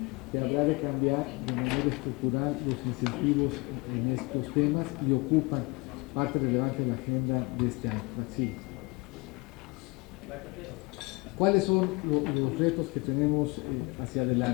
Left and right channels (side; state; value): right; quieter; 27.2 dB